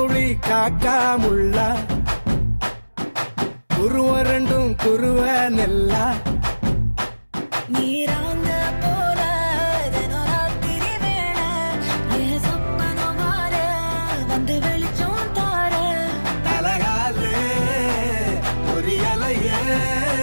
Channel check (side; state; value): both; inverted; correlation -1.00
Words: காக்காமுள்ள குருவ ரெண்டும் குருவ நெல்லா நீராங்க போல தினராத்திரி வேண என் சொப்பனம் மாற வந்து வெளிச்சம் தார அழகாலே பொரியலையே